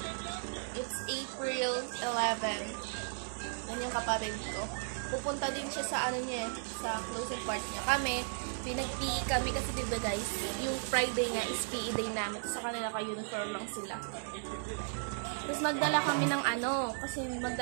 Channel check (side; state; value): left; silent; 54 dB below the other